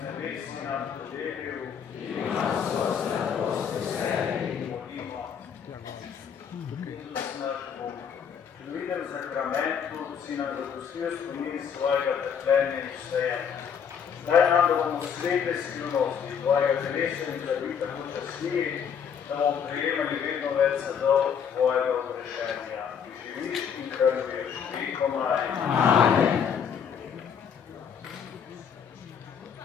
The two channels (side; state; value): right; quieter; 7.4 dB